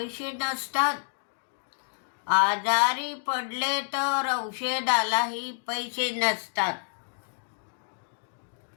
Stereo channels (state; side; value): silent; right; digital silence